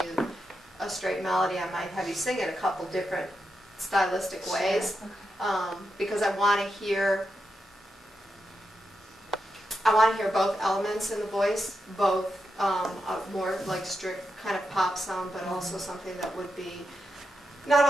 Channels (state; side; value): normal; both; correlation 0.86